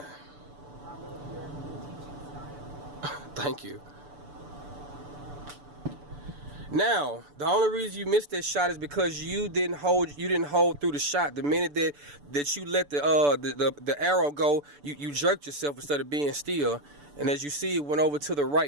Thank you. Now, the only reason you missed that shot is because you didn't hold through the shot. The minute that you let the arrow go, you jerked yourself instead of being still. And as you see, it went over to the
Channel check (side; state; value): left; late; 6.9 ms